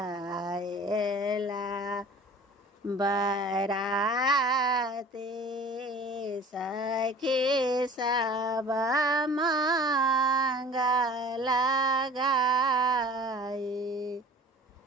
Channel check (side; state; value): both; normal; correlation 0.44